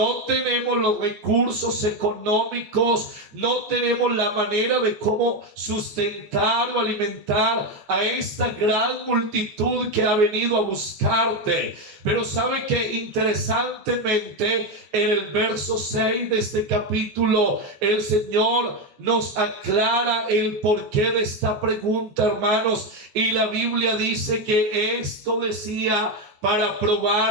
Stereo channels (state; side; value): late; left; 14 ms